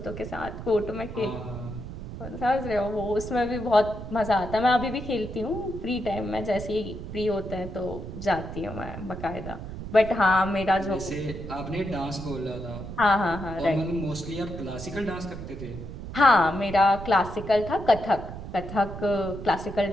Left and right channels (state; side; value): noise; right; rumble, 10 dB below the sound